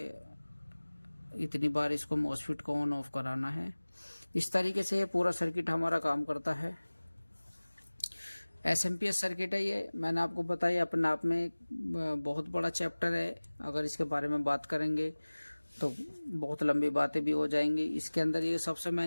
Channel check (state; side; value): inverted; both; correlation -1.00